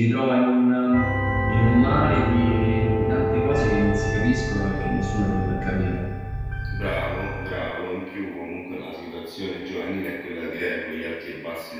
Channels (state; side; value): identical; both; correlation 1.00